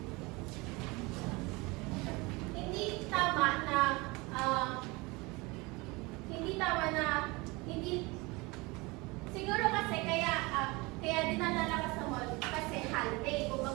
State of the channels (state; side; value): quieter; left; 24.8 dB